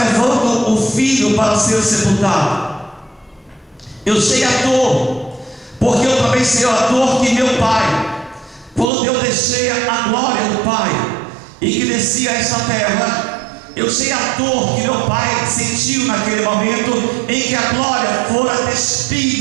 levando o filho para ser sepultado. Eu sei a dor, porque eu também sei a dor que meu pai, quando eu deixei a glória do Pai e que desci a esta terra, eu sei a dor que meu pai sentiu naquele momento em que a glória fora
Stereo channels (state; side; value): drops out; left; at 8.9 s